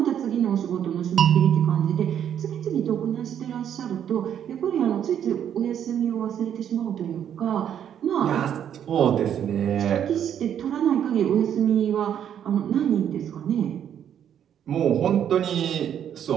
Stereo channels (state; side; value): quieter; left; 9.4 dB